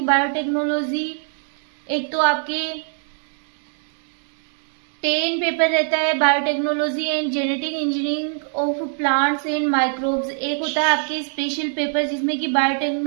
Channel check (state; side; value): silent; left; 55 dB below the other